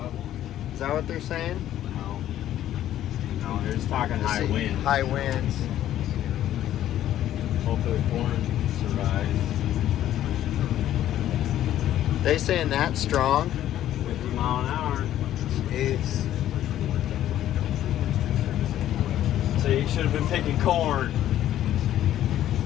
up. Is that what they're saying? No. No, they're just talking high winds. High winds. Hopefully the corn survives. They saying that strong? 50 mile an hour. Jeez. So you should have been picking corn.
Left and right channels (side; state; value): right; quieter; 12.2 dB